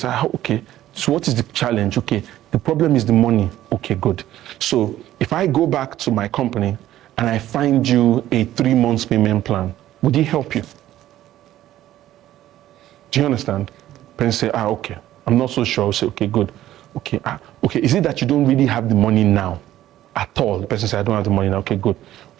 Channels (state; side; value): quieter; left; 13.5 dB